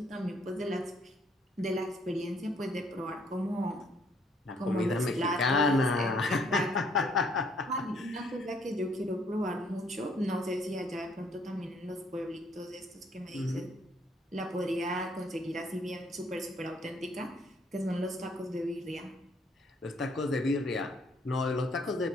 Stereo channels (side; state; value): both; normal; correlation 0.66